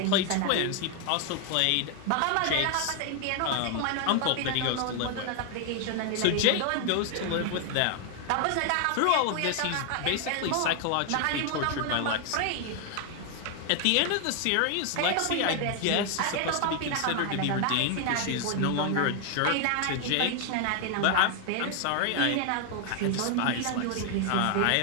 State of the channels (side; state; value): both; different; correlation 0.00